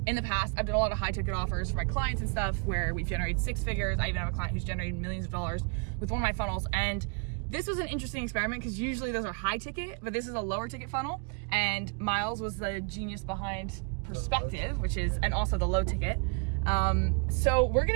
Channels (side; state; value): left; quieter; 34.9 dB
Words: In the past, I've done a lot of high ticket offers for my clients and stuff where we've generated six figures. I even have a client who's generated millions of dollars with one of my funnels. And this was an interesting experiment because usually those are high ticket, but this is a lower ticket funnel. And Miles was the genius behind Perspective, which is, and also the low ticket. So we're